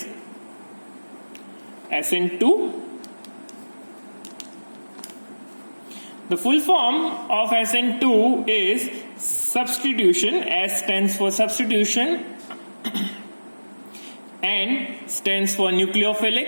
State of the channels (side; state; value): both; inverted; correlation -1.00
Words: SN2. The full form of SN2 is substitution. S stands for substitution, N stands for